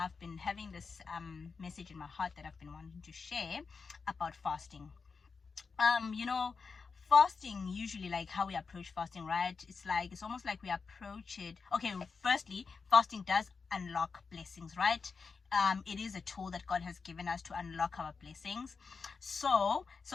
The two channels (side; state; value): right; quieter; 5.0 dB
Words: I've been having this message in my heart that I've been wanting to share about fasting. You know, fasting, usually, like how we approach fasting, right? It's almost like we approach it. Okay, firstly, fasting does unlock blessings, right? It is a tool that God has given us to unlock our blessings. So